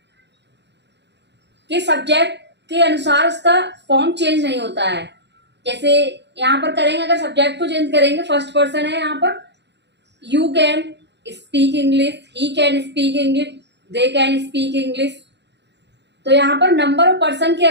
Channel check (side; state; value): left; late; 0.50 ms